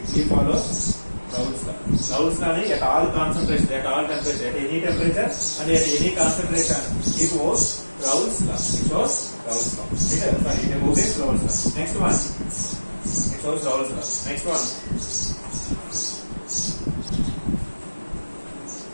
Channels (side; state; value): both; inverted; correlation -1.00